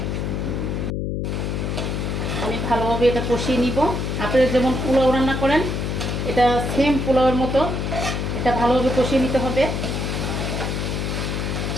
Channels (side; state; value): left; noise; hum, 1 dB below the sound